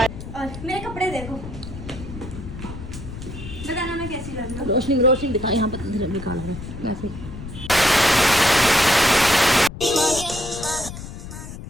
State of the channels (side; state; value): left; noise; rumble, 11 dB below the sound